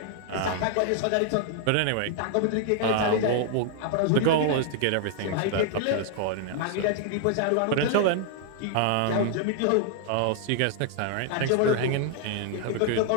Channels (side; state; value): both; different; correlation 0.00